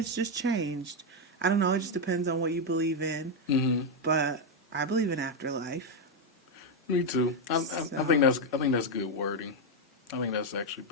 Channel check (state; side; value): normal; both; correlation 0.03